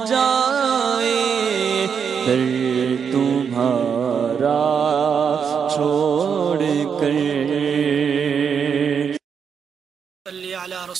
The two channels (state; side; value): quieter; left; 6.9 dB